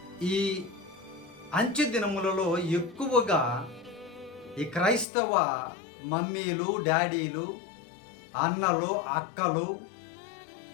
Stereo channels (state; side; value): drops out; right; at 5.1 s